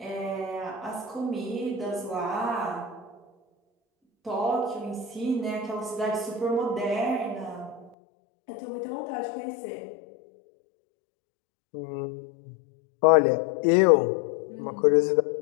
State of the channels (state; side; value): drops out; right; at 7.9 s